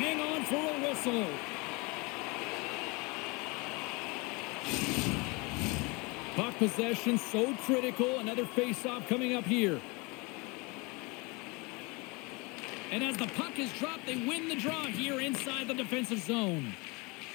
on for a whistle. Puck possession so critical. Another face-off coming up here. And as the puck is dropped, they win the draw here inside the defensive zone.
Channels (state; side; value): quieter; right; 27.8 dB